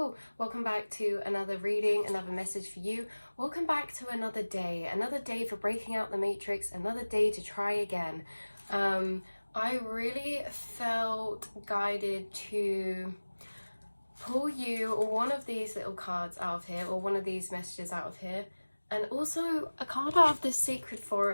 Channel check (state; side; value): inverted; both; correlation -1.00